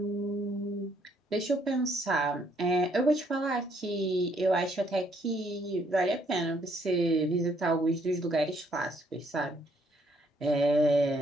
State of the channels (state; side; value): normal; both; correlation 0.68